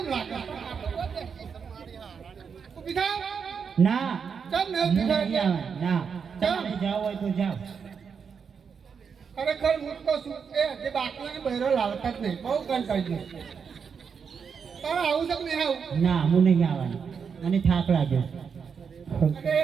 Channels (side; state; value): left; quieter; 6.3 dB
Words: લાગે ઊભી થાવ ના ચાલ ને ઊભી થાવ ના તમે જાવ હોય તો જાવ ખરેખર હું તો શું એ જે બાકીને બહેરો લાવતા જ નહીં બહુ કંટાળી ગયો તારે આવું છે કે નહીં આવું ના હું નહીં આવવાનું મને થાક લાગ્યો